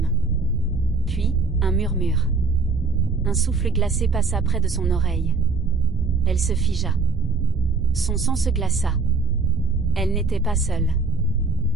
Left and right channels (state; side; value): quieter; left; 4.2 dB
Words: Puis, un murmure. Un souffle glacé passa près de son oreille. Elle se figea. Son sang se glaça. Elle n'était pas seule.